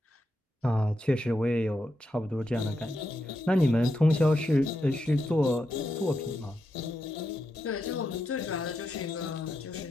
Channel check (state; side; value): normal; both; correlation 0.84